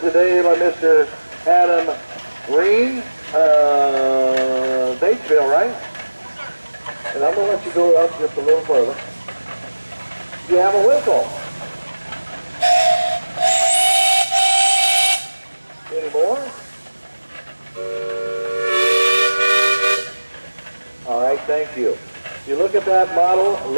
by Mr. Adam Green, Batesville, right? And I'm going to let you go up just a little further. You have a whistle. Any more? All right, thank you. You look at that model,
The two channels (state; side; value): inverted; both; correlation -1.00